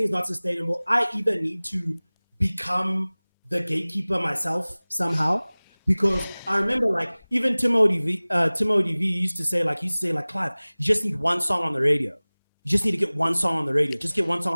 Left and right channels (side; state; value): both; inverted; correlation -1.00